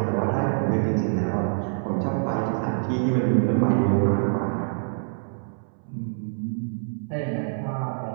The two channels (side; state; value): left; silent; 61 dB below the other